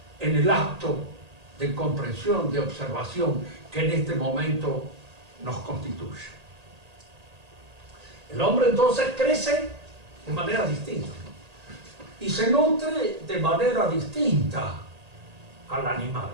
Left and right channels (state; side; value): late; left; 1.8 ms